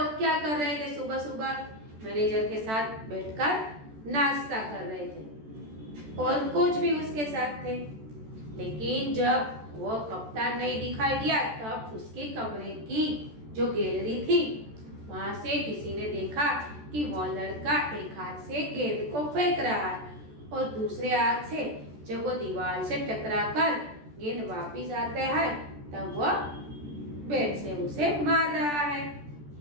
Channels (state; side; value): late; left; 14 ms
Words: क्या कर रहे थे? सुबह सुबह मैनेजर के साथ बैठकर नाश्ता कर रहे थे और कोच भी उसके साथ थे। लेकिन जब वो कप्तान नहीं दिखाई दिया तब उसके कमरे की जो गैलरी थी वहां से किसी ने देखा कि वो लड़का एक हाथ से गेंद को फेंक रहा है और दूसरे हाथ से जब वो दीवार से टकराकर गेंद वापस आता है तब वह बैट से उसे मार रहा है।